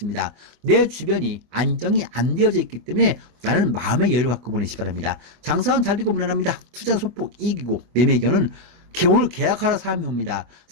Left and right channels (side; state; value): left; late; 24 ms